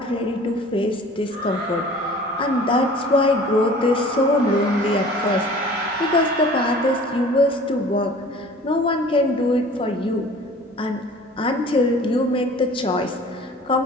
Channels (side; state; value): both; normal; correlation 0.46